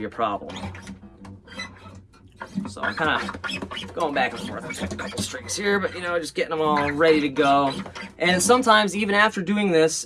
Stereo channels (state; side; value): identical; both; correlation 1.00